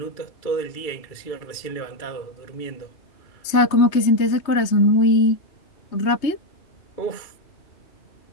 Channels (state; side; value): late; right; 3.2 ms